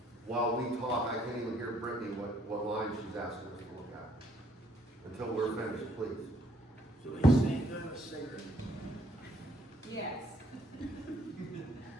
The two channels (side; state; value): both; normal; correlation 0.66